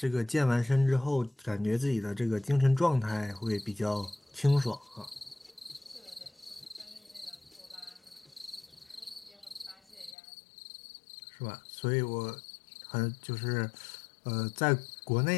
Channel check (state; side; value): drops out; right; at 10.2 s